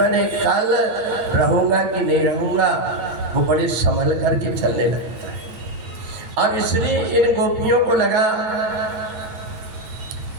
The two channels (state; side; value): late; left; 9.4 ms